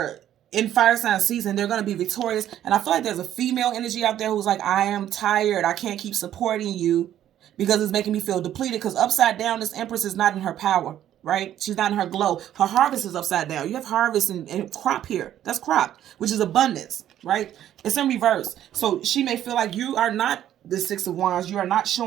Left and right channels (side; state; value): left; quieter; 11.5 dB